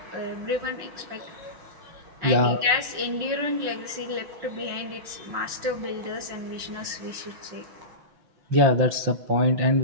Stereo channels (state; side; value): late; left; 6.1 ms